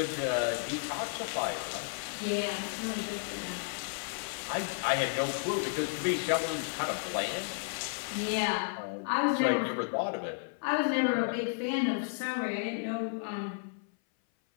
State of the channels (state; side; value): silent; right; 56 dB below the other